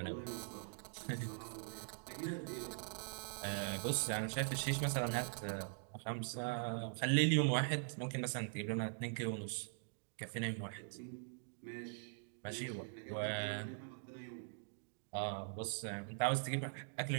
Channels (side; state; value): left; silent; digital silence